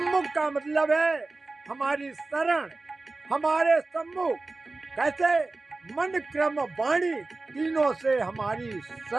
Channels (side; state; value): left; quieter; 3.4 dB